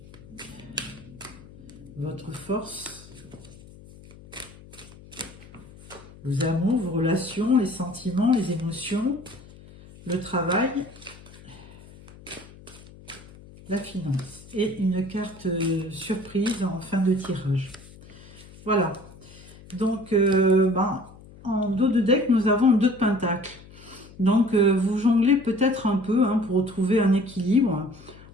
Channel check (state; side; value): noise; left; hum, 20 dB below the sound